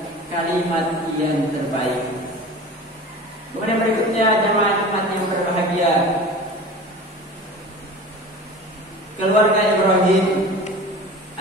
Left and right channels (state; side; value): normal; both; correlation 0.37